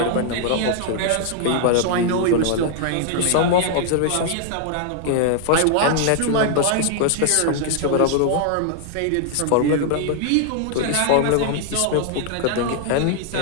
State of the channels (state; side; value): different; both; correlation 0.00